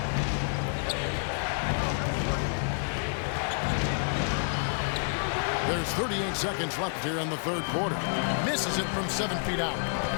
There's 38 seconds left here in the third quarter. Misses it from 7 feet out.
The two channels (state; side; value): silent; right; digital silence